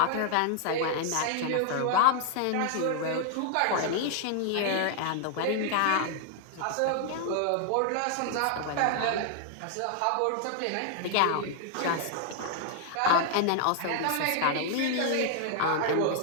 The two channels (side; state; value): both; different; correlation 0.00